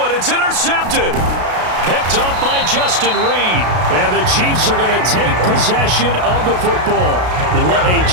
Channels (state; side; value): late; left; 33 ms